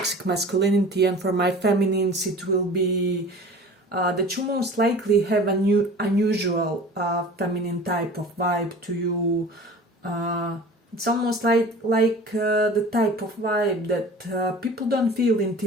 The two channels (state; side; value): normal; both; correlation 0.41